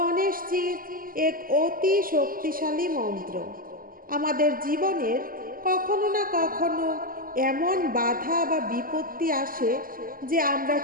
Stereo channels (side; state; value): left; late; 0.41 ms